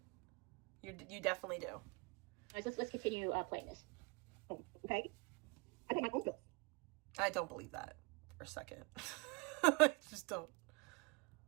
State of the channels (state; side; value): quieter; left; 27.2 dB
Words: You definitely do. Let's continue playing this. Oh, okay. I pay my own bills. I don't believe that for a second. I just don't.